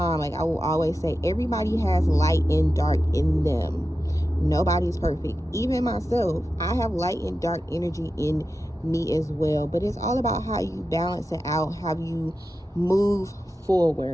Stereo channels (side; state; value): both; normal; correlation 0.91